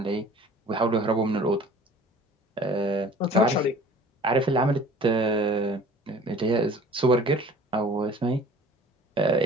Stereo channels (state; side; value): normal; both; correlation 0.47